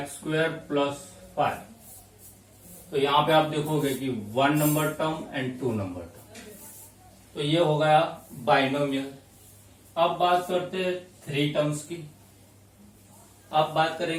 + 5। तो यहां पे आप देखोगे कि 1 number term and 2 number term, तो ये हो गया बाइनोमियल। अब बात करते हैं 3 टर्म्स की। अब बात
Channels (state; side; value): identical; both; correlation 1.00